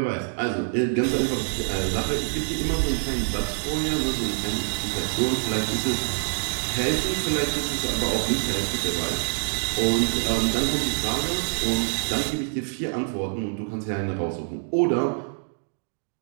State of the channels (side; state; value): left; silent; digital silence